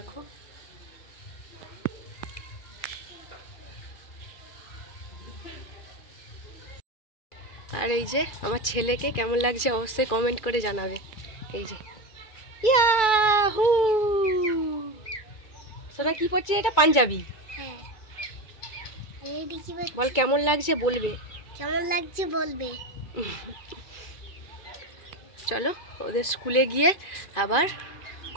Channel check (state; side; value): late; right; 2.3 ms